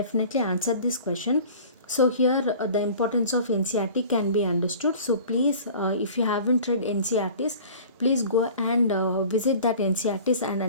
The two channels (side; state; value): both; inverted; correlation -0.44